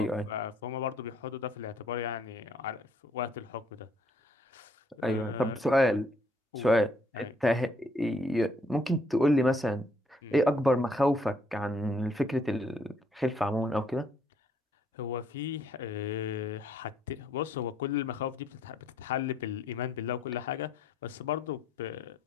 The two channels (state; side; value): normal; both; correlation 0.67